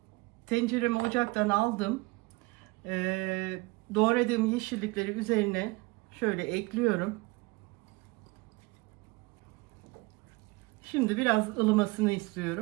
Tenceremi ocaktan aldım. Doğradığım yeşillikleri üzerine şöyle ekliyorum. Şimdi biraz ılımasını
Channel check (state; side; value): quieter; left; 24.1 dB